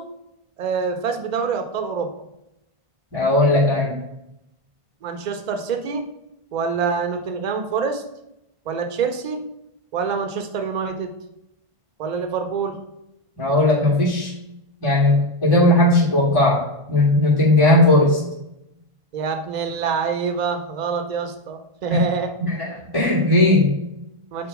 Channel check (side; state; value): left; late; 2.0 ms